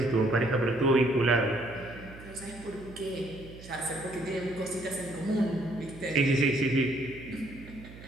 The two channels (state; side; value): noise; right; hum, 17 dB below the sound